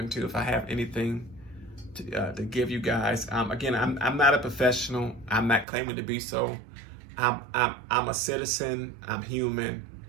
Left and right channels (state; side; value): drops out; left; at 5.7 s